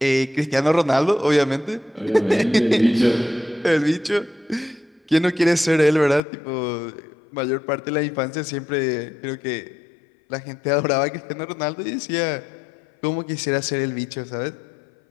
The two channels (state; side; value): drops out; right; at 6.2 s